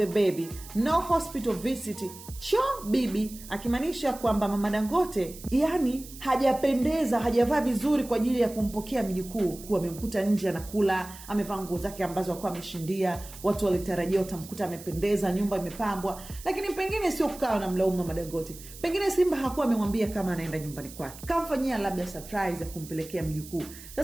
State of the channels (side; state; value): right; noise; hiss, 16 dB below the sound